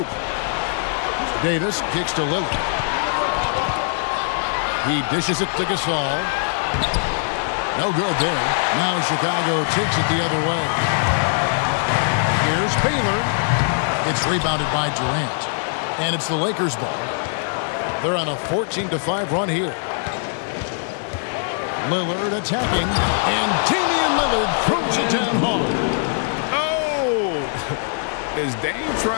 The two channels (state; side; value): silent; right; 65 dB below the other